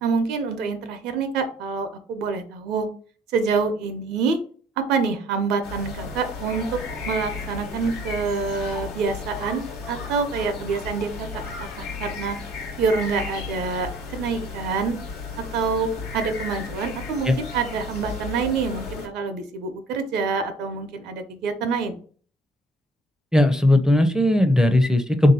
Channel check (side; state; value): both; normal; correlation 0.60